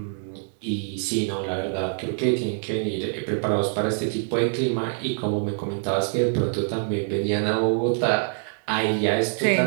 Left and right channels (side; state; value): left; silent; 62 dB below the other